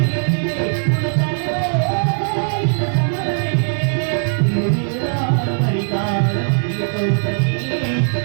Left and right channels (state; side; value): silent; left; 63 dB below the other